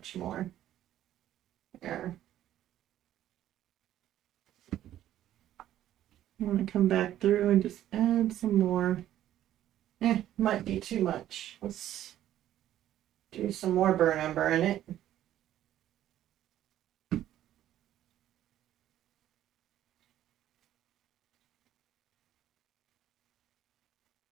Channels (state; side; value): quieter; left; 12.3 dB